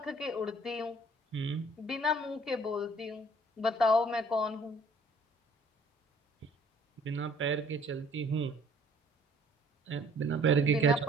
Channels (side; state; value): both; normal; correlation 0.57